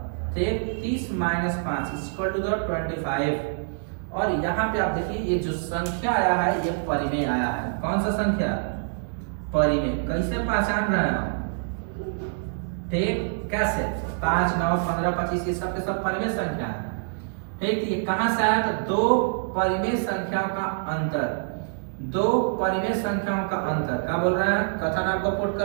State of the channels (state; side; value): silent; left; 61 dB below the other